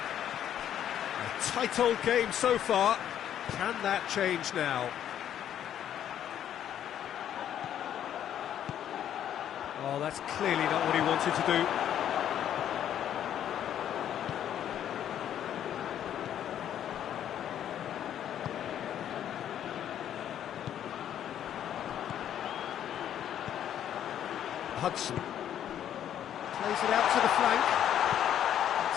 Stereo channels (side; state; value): right; quieter; 10.3 dB